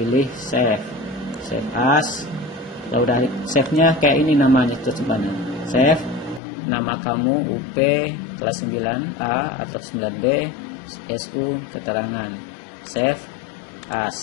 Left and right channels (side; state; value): right; drops out; at 6.4 s